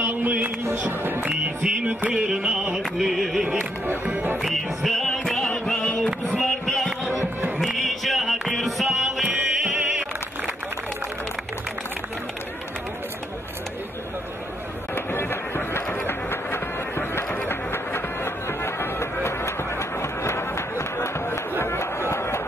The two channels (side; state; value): both; normal; correlation 0.76